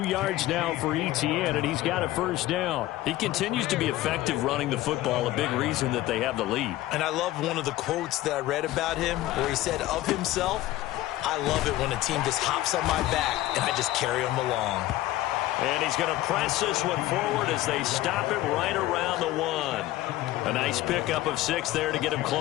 yards now for Etienne, and he's got a first down. He continues to be effective running the football, a big reason that they have the lead. And I love one of the quotes that I read about him where he said of himself, "I love it when a team just hops on my back and I just carry them along." And he's going to press this one forward as they stop him right around the 1. A nice pickup of 6 there to get him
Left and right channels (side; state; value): right; quieter; 15.8 dB